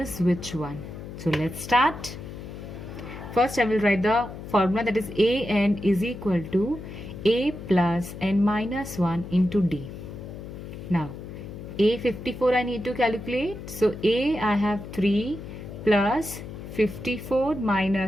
which one. So let's start. First I will write the formula, that is AN is equal to A plus N minus 1 into D. Now A54 I need to calculate. So A I have 3 plus 54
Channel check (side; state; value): left; noise; hum, 11 dB below the sound